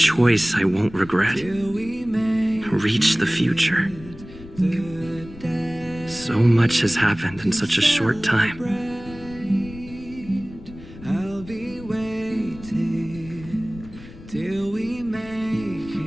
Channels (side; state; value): left; noise; rumble, 17 dB below the sound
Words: I won't regret. till we make Reach the future. the day. So much has happened in such a short time. I'll be waiting till we make